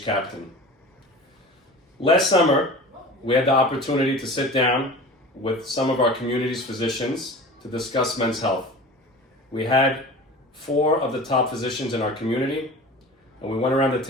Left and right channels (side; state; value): both; normal; correlation 0.37